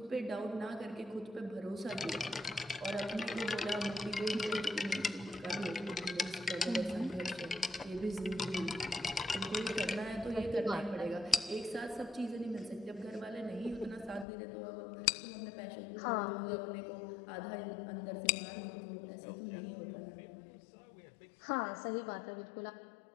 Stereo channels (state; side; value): drops out; right; at 14.2 s